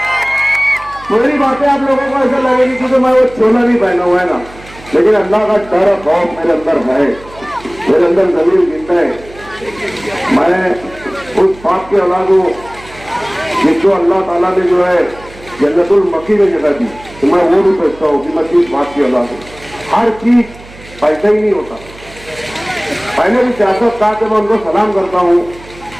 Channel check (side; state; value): right; noise; hum, 20 dB below the sound